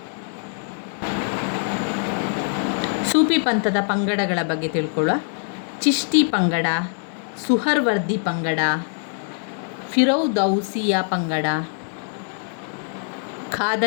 ಸೂಫಿ ಪಂಥದ ಪಂಗಡಗಳ ಬಗ್ಗೆ ತಿಳ್ಕೊಳ್ಳುವ. ಚಿಶ್ತಿ ಪಂಗಡ, ಸುಹರ್ವರ್ದಿ ಪಂಗಡ, ಫಿರೌದೌಸಿಯಾ ಪಂಗಡ,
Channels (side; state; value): right; silent; 63 dB below the other